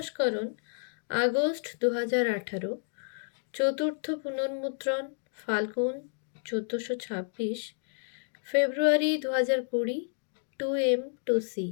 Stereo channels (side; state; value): right; silent; digital silence